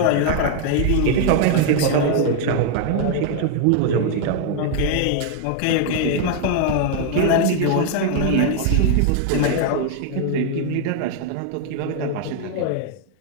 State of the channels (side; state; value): both; different; correlation 0.00